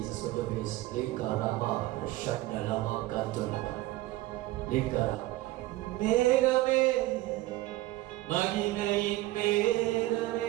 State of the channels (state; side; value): quieter; left; 17.4 dB